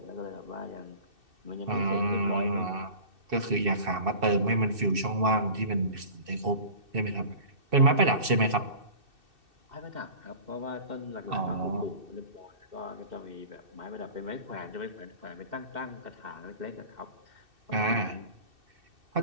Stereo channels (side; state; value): left; late; 2.6 ms